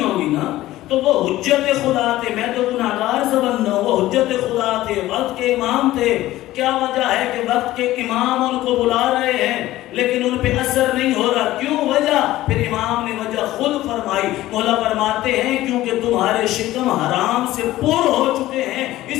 نا۔ تو وہ حجت خدا تھے، میں تو گناہگار سے بندہ ہوں، وہ حجت خدا تھے، وقت کے امام تھے۔ کیا وجہ ہے کہ وقت کے امام ان کو بلا رہے ہیں لیکن ان پہ اثر نہیں ہو رہا؟ کیوں وجہ؟ پھر امام نے وجہ خود فرمائی۔ مولا فرماتے ہیں کیونکہ تمہارے شکم حرام سے پر ہو چکے ہیں،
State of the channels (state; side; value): quieter; right; 15.8 dB